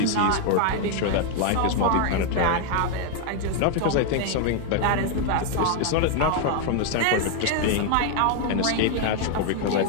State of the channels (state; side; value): different; both; correlation 0.00